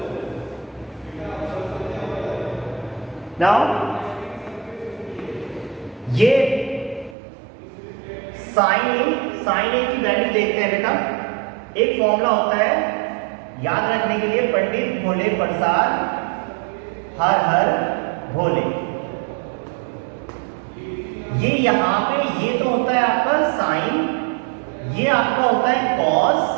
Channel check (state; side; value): drops out; left; at 7.2 s